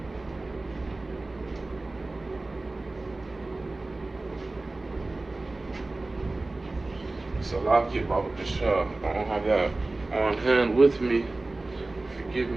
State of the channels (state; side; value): quieter; left; 3.1 dB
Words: Salakia, Baba Kasha. I don't have that on hand with me. Forgive